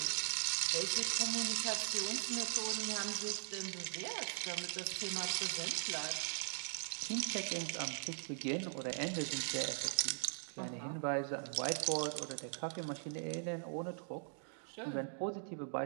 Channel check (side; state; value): left; silent; digital silence